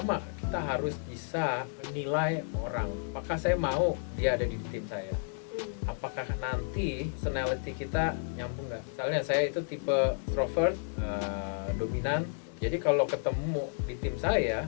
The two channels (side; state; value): right; silent; 57 dB below the other